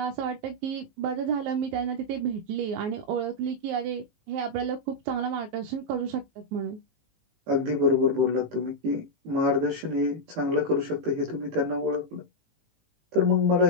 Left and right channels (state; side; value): late; left; 18 ms